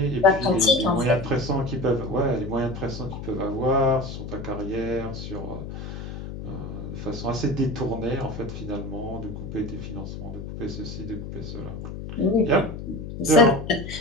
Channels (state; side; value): noise; left; hum, 8 dB below the sound